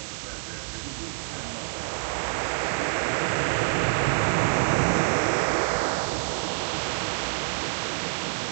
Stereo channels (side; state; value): left; silent; 60 dB below the other